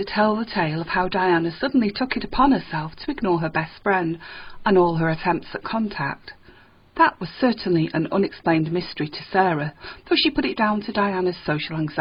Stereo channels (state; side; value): identical; both; correlation 1.00